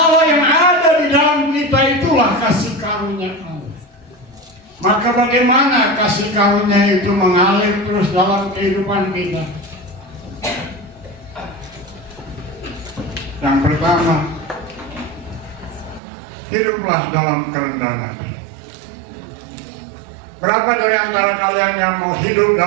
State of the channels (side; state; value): left; drops out; at 16.0 s